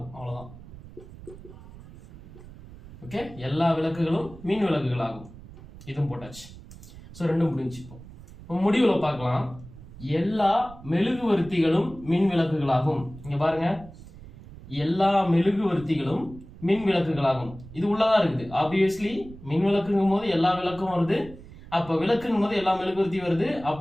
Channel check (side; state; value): right; noise; rumble, 17 dB below the sound